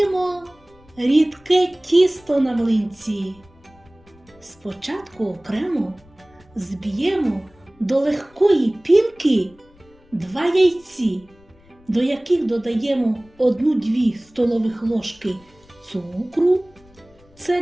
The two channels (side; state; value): left; noise; rumble, 29 dB below the sound